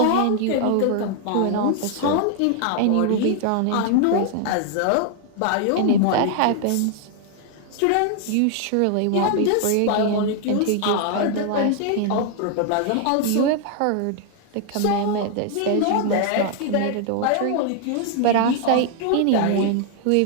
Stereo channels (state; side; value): different; both; correlation 0.00